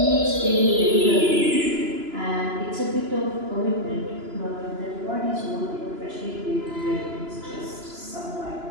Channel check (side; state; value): left; late; 2.9 ms